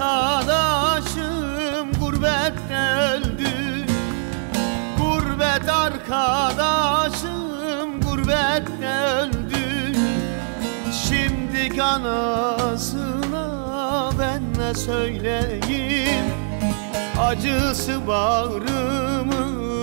gurbette öldü. Gurbet arkadaşım gurbette öldü. Şimdi anasına ben ne söyleyeyim? Acısı bağrımı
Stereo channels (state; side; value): silent; left; 64 dB below the other